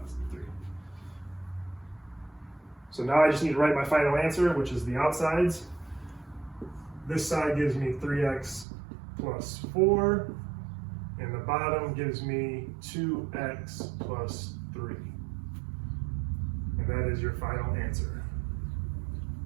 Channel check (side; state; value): left; drops out; at 8.7 s